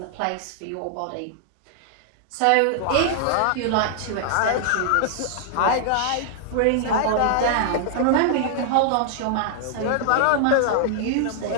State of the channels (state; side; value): different; both; correlation -0.01